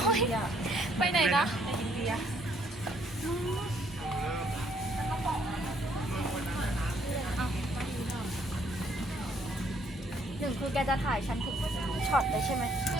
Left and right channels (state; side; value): normal; both; correlation 0.67